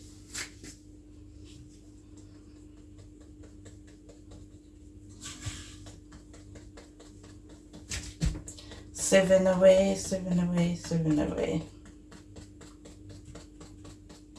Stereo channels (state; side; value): identical; both; correlation 1.00